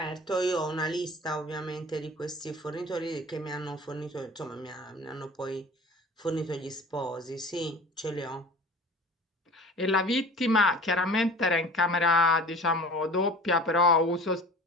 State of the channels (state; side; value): normal; both; correlation 0.41